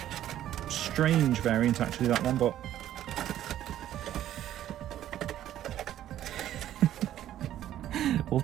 strange variant actually, that one, but we'll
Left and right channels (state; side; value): quieter; left; 12.1 dB